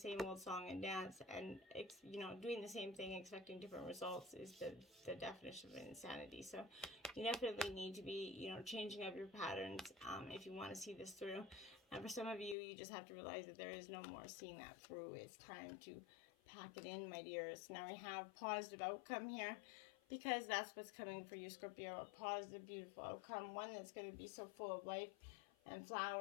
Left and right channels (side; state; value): right; drops out; at 12.6 s